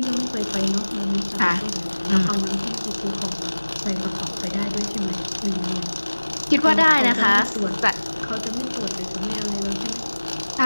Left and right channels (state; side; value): inverted; both; correlation -1.00